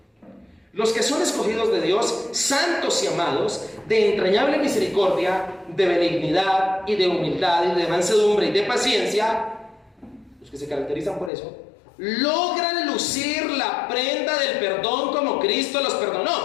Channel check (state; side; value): drops out; right; at 11.3 s